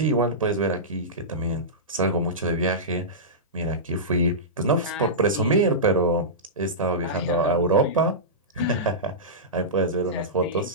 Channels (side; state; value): both; normal; correlation -0.16